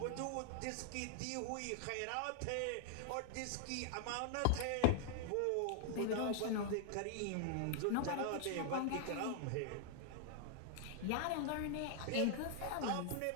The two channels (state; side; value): different; both; correlation -0.01